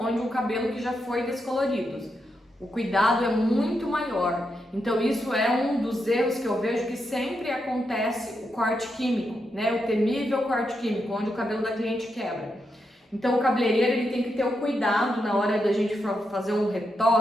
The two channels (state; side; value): normal; both; correlation 0.84